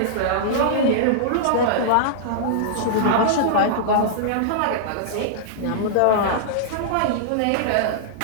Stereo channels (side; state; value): both; different; correlation -0.02